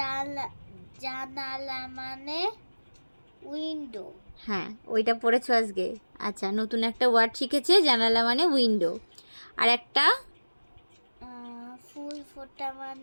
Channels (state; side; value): inverted; both; correlation -1.00